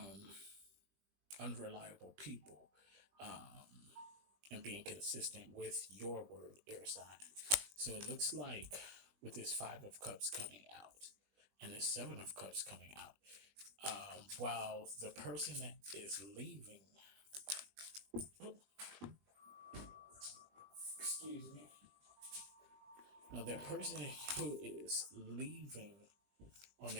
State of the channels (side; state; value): left; late; 20 ms